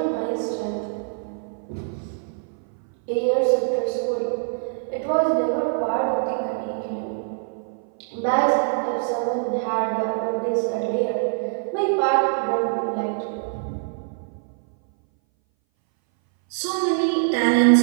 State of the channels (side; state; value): left; silent; 60 dB below the other